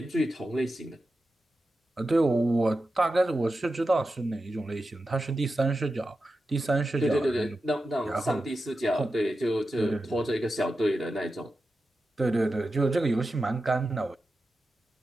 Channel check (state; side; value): normal; both; correlation 0.91